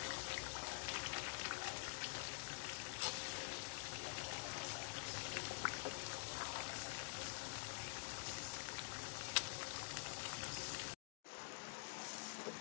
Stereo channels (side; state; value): right; silent; digital silence